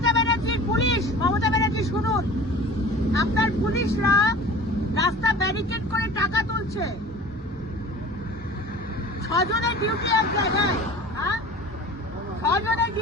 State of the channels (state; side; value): normal; both; correlation 0.41